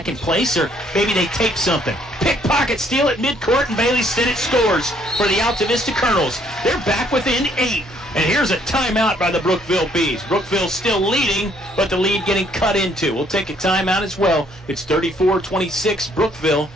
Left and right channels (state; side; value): normal; both; correlation 0.65